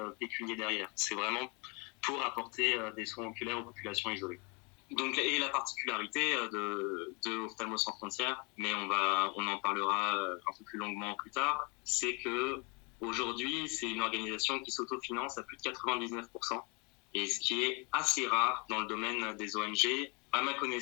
pécunier derrière. C'est vraiment pour apporter des soins oculaires aux populations isolées. Donc, et la particularité de Ophtalmo Sans Frontières, mais on en parlera un peu plus longuement plus tard, c'est que aujourd'hui, c'est une organisation qui s'autofinance à plus de 99%, et ce qui est assez rare dans le domaine des ONG. À ma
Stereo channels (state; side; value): quieter; right; 31.6 dB